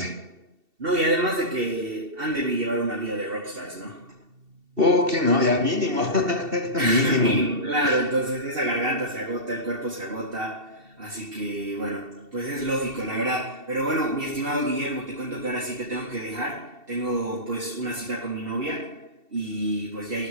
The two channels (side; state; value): left; late; 2.7 ms